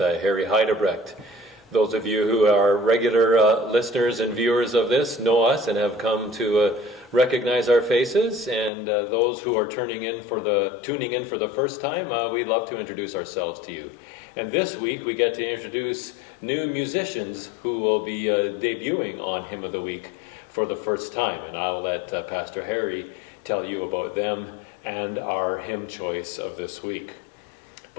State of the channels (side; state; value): right; drops out; at 8.7 s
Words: Heidebrecht. Those of you who are regular listeners and viewers of this know us and have come to recognize our faces, and those who are tuning in for the first time, we'd love to introduce ourselves to you. And this week we get to introduce new musicians who will be debuting on Hymn of the Week for the first time, and I'll let Pastor Harry tell you about them and our hymn choice of this week.